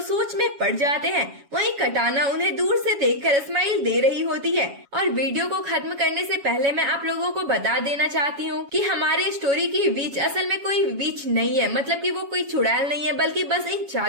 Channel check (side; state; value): left; late; 7.2 ms